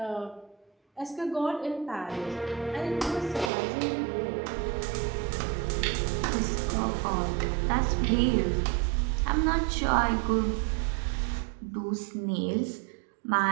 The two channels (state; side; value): drops out; left; at 3.5 s